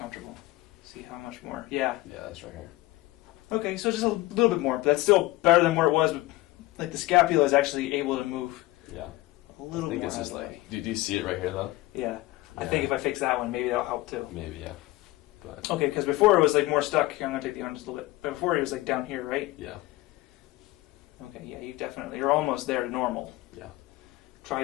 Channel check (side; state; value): right; quieter; 19.2 dB